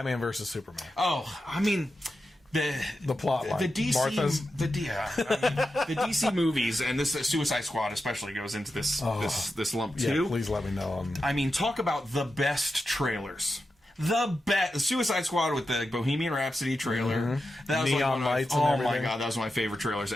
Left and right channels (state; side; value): normal; both; correlation 0.89